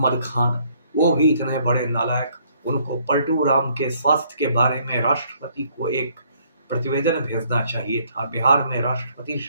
खान, वो भी इतने बड़े नालायक। उनको पलटू राम के स्वास्थ्य के बारे में राष्ट्रपति को एक प्रतिवेदन भेजना चाहिए था। बिहार में राष्ट्रपति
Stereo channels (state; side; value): inverted; both; correlation -0.65